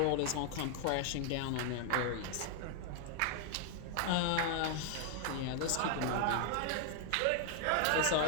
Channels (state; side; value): different; both; correlation 0.00